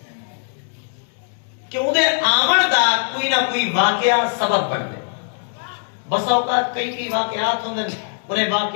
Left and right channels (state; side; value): silent; right; digital silence